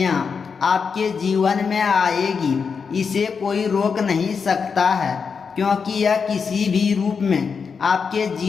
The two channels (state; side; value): quieter; right; 5.7 dB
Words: आपके जीवन में आएगी, इसे कोई रोक नहीं सकता है, क्योंकि यह किसी भी रूप में आपके